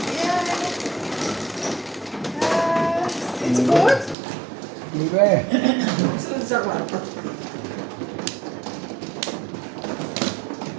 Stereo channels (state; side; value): drops out; left; at 4.2 s